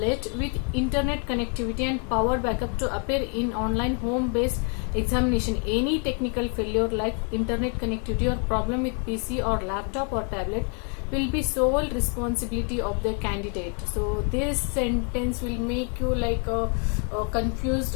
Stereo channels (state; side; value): quieter; right; 39.0 dB